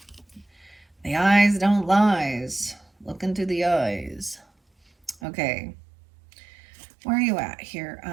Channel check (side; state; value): left; drops out; at 5.2 s